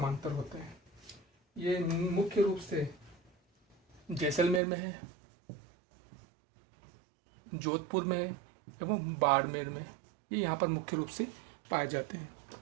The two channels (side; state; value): left; drops out; at 4.6 s